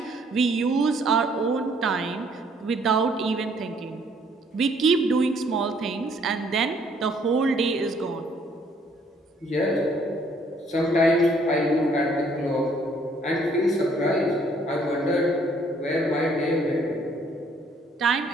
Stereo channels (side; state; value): both; normal; correlation 0.64